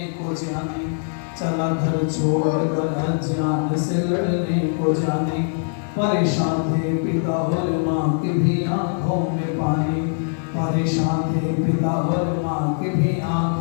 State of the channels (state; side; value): silent; right; digital silence